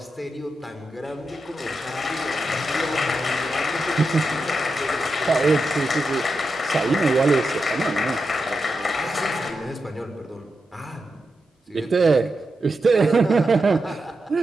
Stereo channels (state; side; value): normal; both; correlation 0.88